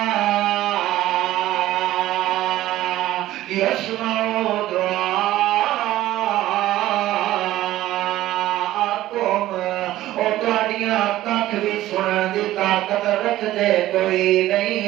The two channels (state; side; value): quieter; left; 14.9 dB